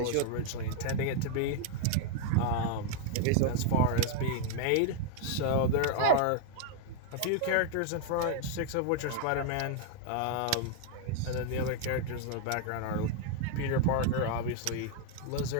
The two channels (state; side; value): different; both; correlation 0.00